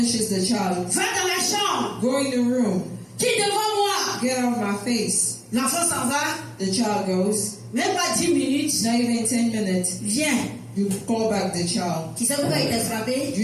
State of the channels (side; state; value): both; identical; correlation 1.00